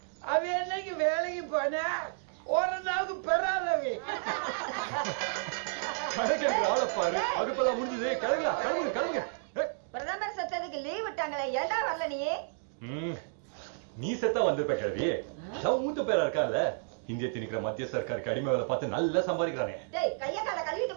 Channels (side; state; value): left; silent; digital silence